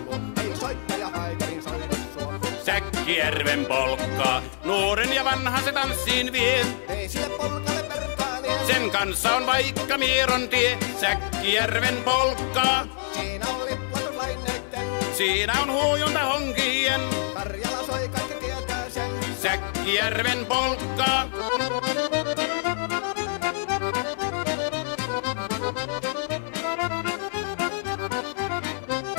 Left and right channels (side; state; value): right; silent; 61 dB below the other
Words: luo. Ei soittaja haitarin soida suo. Säkkijärven polkkaa. Nuoren ja vanhan se tanssiin vie. Ei sille polkalle vertailie. Sen kanssa on vaikka Mieron tie. Säkkijärven polkkaa. Siinä on liplatuslaineitten. Siinä on huojunta honkien. Karjala soi, kaikki tietää sen. Säkkijärven polkkaa.